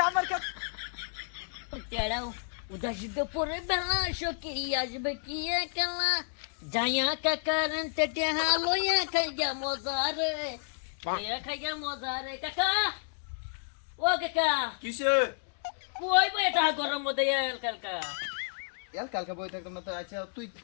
আমার তেড়াও উদাসিত পরে বেলা সকি আসবে কি একলা যাইয়া কাকারন তেটে হালোয়া খাইয়া মজারে খাইয়া মজারে কাকা ও কাকা কিসে কই বই এটা গরম মধ্যে এল কাকা কালকে বই থাকতাম না তো আচ্ছা তুই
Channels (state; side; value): silent; right; digital silence